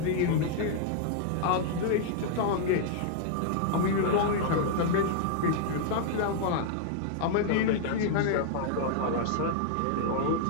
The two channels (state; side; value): different; both; correlation -0.01